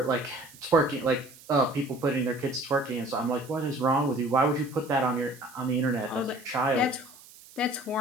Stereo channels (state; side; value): noise; right; hiss, 22 dB below the sound